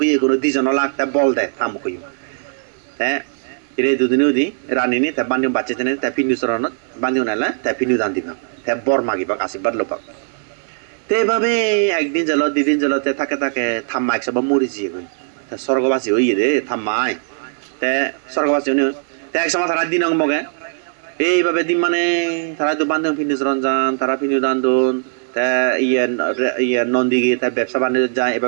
ইয়ে কোনো দুজন লাগ তা বল দেয় থামুক হ্যাঁ রে দুদিনে উদি রানিনি তা বান্ধি বাচ্চা তেনে তা পিন্ডু চরণত বান্ধি নাইলে তা পিন্ডু দান দিবাক তা বর মাগিবাক আশীর্বাদ লোপাক তো এইভাবে একদিন জেল দুদিন জেলতে থাকে থাম্মা একসব মরি যিয়ে গই তা স্বর্গবাসী হইয়ে দে থাম্মাই তে স্বর্গবাসী তে এক সময় তারা দিন মগে এইভাবে দিন মানে তারা তো বান্ধব পিন্ডু চরণ যান তারা পিন্ডু দান দোন তা ইয়ে নন্দী গিয়ে তার ব্যবসা বাণিজ্য যায়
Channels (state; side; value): silent; left; digital silence